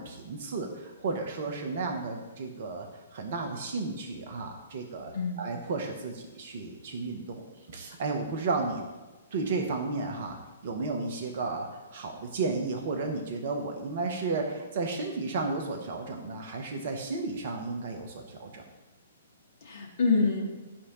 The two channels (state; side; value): inverted; both; correlation -0.49